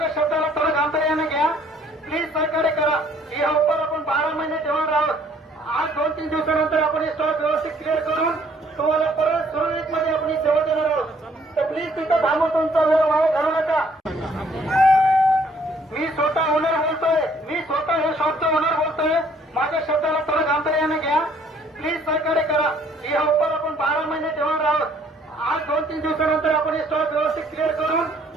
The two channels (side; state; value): both; normal; correlation 0.61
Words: शब्दाला थोडं गांभीर्याने घ्या प्लीज, सहकार्य करा. या ऑफर आपण 12 महिने ठेवणार आहोत. आज 2-3 दिवसानंतर आपण हे स्टॉक व्यवस्थित क्लिअर करून तुम्हाला परत सुरळीत मध्ये आपण ही सेवा देणार आहोत. तर प्लीज तिथं थांबून तुमचा वेळ वाया घालू नका. मी स्वतः ओनर बोलतोय, मी स्वतः हे शॉपचा ओनर बोलतोय. माझ्या शब्दाला थोडं गांभीर्याने घ्या प्लीज, सहकार्य करा. या ऑफर आपण 12 महिने ठेवणार आहोत. आज 2-3 दिवसानंतर आपण हे स्टॉक व्यवस्थित क्लिअर करून